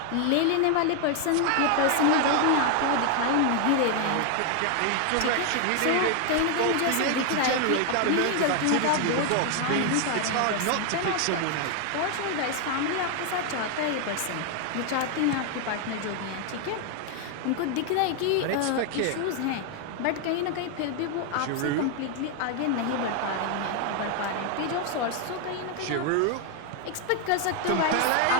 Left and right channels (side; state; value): both; different; correlation 0.01